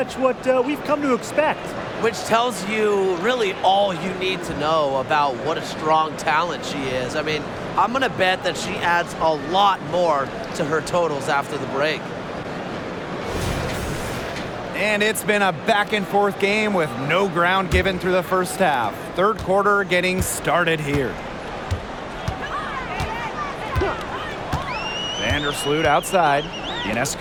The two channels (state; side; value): identical; both; correlation 1.00